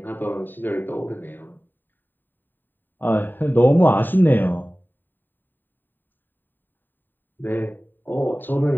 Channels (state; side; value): late; right; 0.092 ms